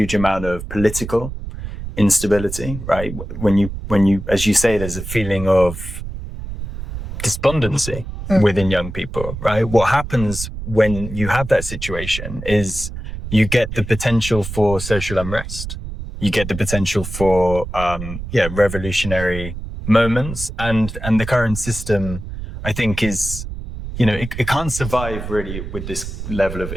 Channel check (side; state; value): right; noise; rumble, 8 dB below the sound